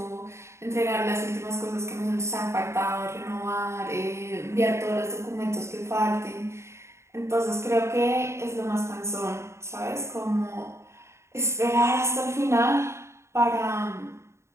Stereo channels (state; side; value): late; left; 0.13 ms